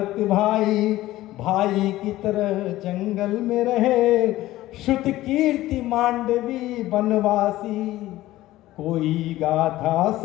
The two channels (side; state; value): right; quieter; 16.1 dB